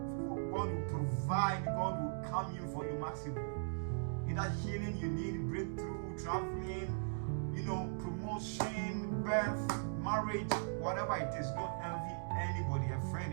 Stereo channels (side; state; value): left; silent; digital silence